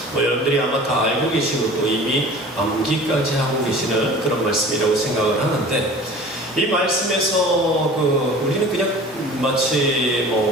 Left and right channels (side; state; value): both; normal; correlation 0.42